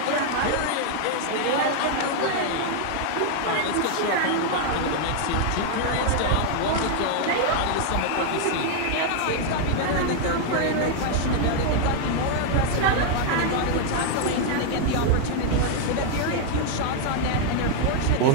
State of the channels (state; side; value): different; both; correlation 0.00